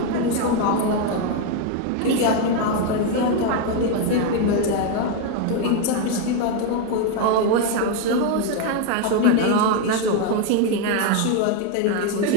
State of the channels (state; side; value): different; both; correlation 0.01